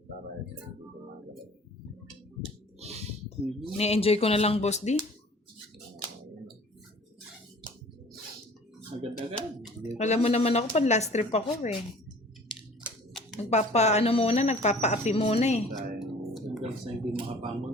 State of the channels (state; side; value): normal; both; correlation 0.48